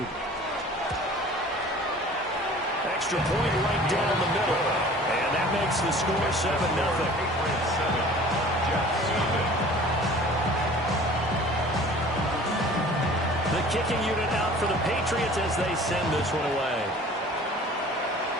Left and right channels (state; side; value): normal; both; correlation 0.46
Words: Extra point right down the middle. And that makes the score 7-0. The kicking unit out for the Patriots as they send this one away.